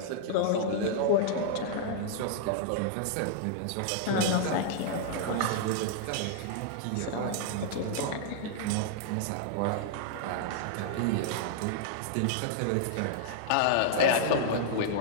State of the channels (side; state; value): both; different; correlation -0.01